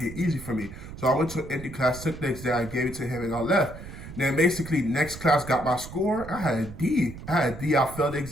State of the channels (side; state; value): right; noise; rumble, 13 dB below the sound